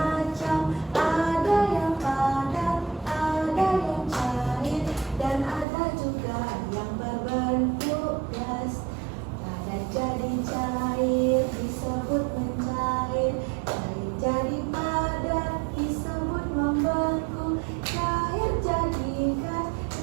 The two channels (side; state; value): left; drops out; at 5.7 s